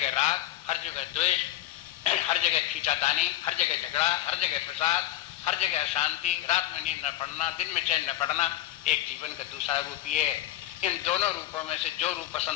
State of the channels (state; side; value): quieter; right; 14.2 dB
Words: राग, हर जगह द्वेष, हर जगह खींचातानी, हर जगह झगड़ा, हर जगह प्रसाद, हर जगह अशांति, रात में नींद न पड़ना, दिन में चैन न पड़ना, एक जीवन का दूसरा रूप ये है। इन दोनों रूपों में से जो रूप